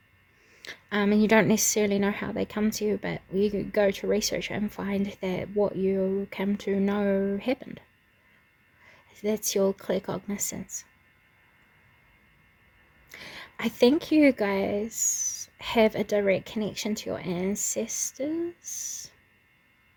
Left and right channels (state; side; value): identical; both; correlation 1.00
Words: And you don't necessarily know how they come to you, but you could go to research and find that what you come to know happened. That's your clear cognizance. I think you guys have a direct connection to your ancestors.